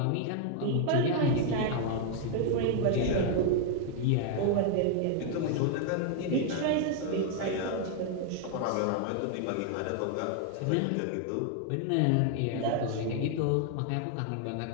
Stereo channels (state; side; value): different; both; correlation 0.00